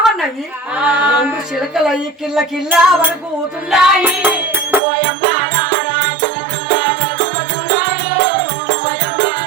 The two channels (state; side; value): drops out; left; at 4.8 s